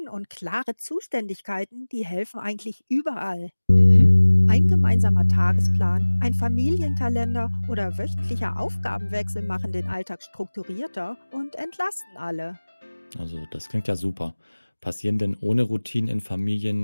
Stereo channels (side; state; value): both; inverted; correlation -1.00